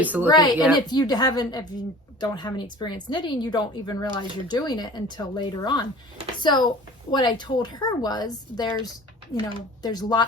to looking at it. And if you don't have any experience knitting, you don't even realize you're doing it until later on. So what I told her was there's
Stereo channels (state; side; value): normal; both; correlation 0.43